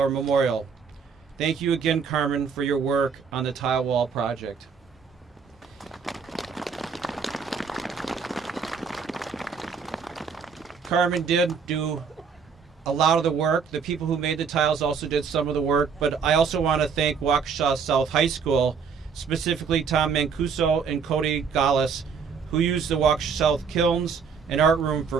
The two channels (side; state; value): left; quieter; 6.0 dB